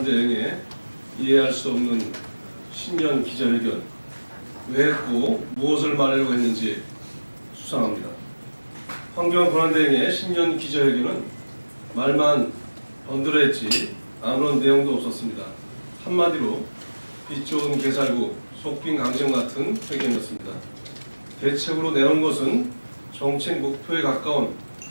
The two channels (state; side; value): inverted; both; correlation -1.00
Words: 이해할 수 없는 신년 기자회견, 왜 했고 무엇을 말하려고 했는지 수상합니다. 황교안 권한대행의 신년 기자회견은 말만 번들어했지 아무런 내용도 없었습니다. 한마디로 빛 좋은 개살구, 속빈 강정 같은 회견이었습니다. 대책으로 내놓은 것은 정책 목표에 가까운